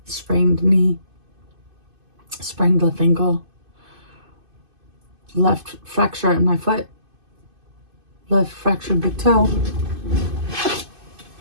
sprained knee, sprained left ankle, left fracture in my foot, left fractured big toe.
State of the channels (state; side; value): late; left; 2.5 ms